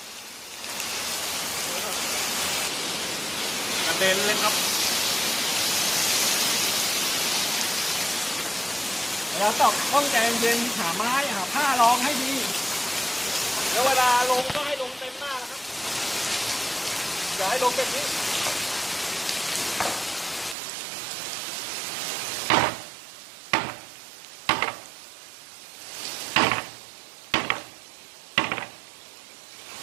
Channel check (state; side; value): drops out; left; at 20.6 s